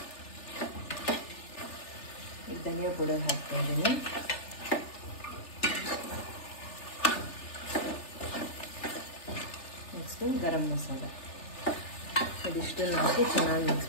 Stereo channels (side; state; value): right; late; 3.4 ms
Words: ಈಗ ಧನಿಯಾ ಪೌಡರ್ ಹಾಕ್ತಾ ಇದ್ದೀನಿ. ನೆಕ್ಸ್ಟು ಗರಂ ಮಸಾಲ, ಇದಿಷ್ಟನ್ನು ಹಾಕಿ ಚೆನ್ನಾಗಿ ಮಿಕ್ಸ್